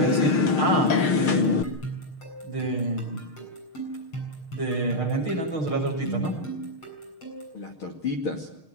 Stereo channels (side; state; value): right; late; 6.5 ms